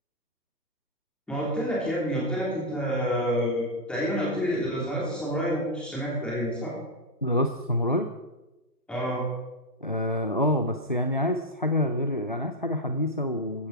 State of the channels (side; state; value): both; normal; correlation 0.01